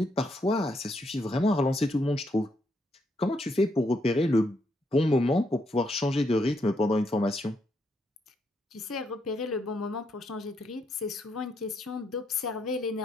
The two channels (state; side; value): normal; both; correlation 0.77